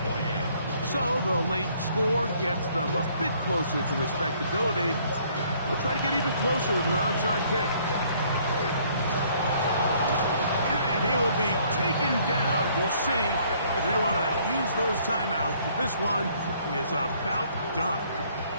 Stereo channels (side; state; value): both; inverted; correlation -0.62